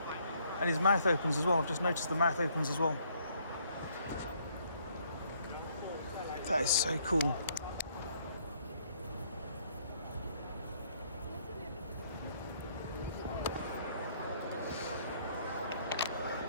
And his mouth opens as well. I've just noticed the mouth opens as well. That is so cool.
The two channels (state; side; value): inverted; both; correlation -0.66